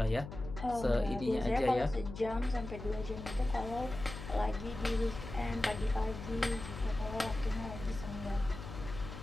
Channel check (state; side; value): noise; left; hum, 10 dB below the sound